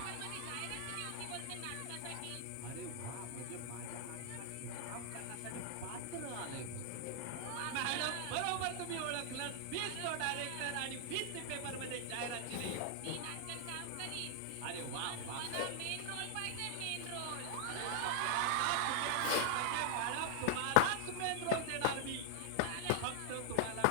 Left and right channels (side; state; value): both; different; correlation 0.00